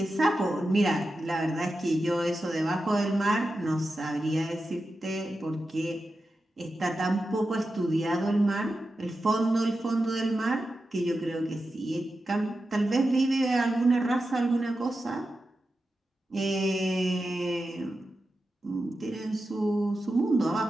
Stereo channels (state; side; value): normal; both; correlation 0.91